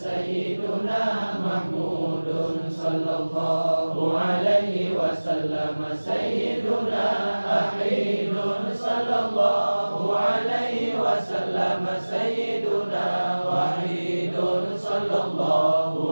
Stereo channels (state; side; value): inverted; both; correlation -1.00